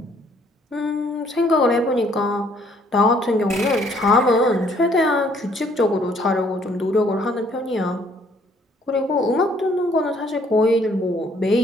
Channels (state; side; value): normal; both; correlation 0.63